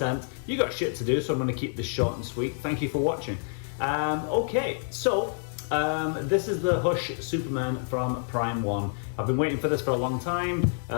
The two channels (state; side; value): silent; right; digital silence